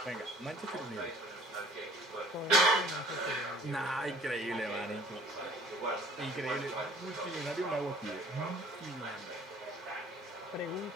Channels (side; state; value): both; normal; correlation 0.51